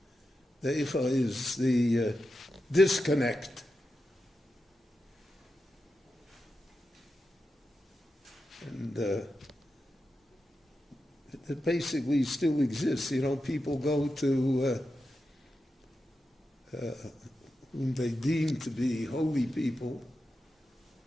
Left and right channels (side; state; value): both; normal; correlation 0.89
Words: The eicha is the disconnect. And it basically still exists. People go to whom they deem to be holy people,